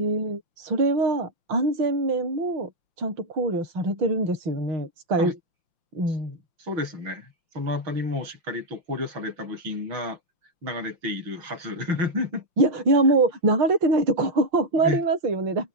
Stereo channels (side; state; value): left; late; 5.8 ms